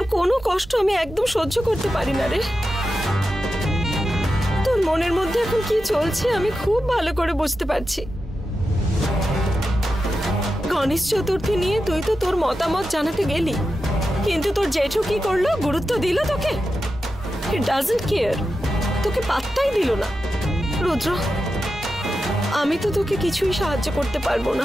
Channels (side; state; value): both; normal; correlation 0.90